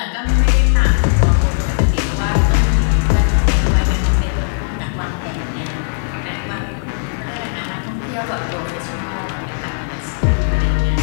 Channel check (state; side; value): silent; right; digital silence